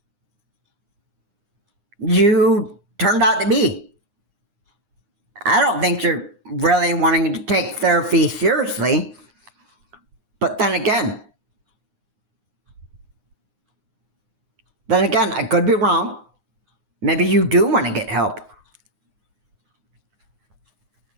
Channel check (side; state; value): left; late; 9.7 ms